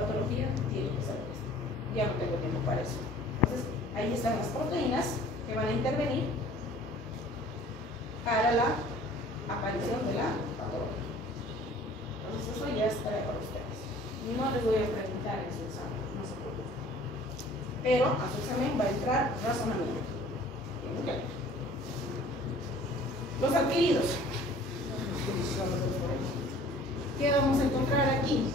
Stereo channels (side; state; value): both; normal; correlation 0.50